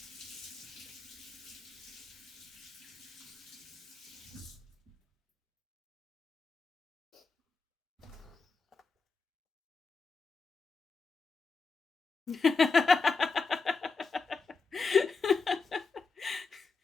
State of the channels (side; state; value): right; quieter; 4.4 dB